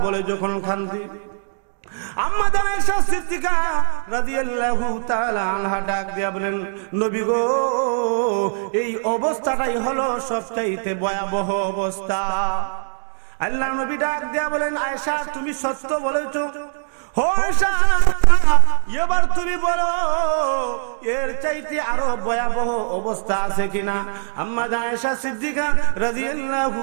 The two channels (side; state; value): left; silent; 65 dB below the other